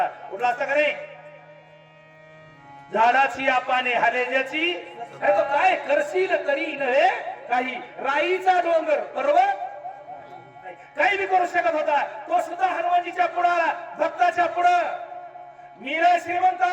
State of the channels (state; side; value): identical; both; correlation 1.00